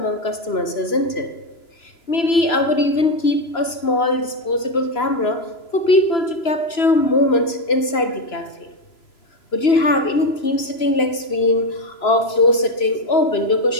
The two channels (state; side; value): late; right; 3.0 ms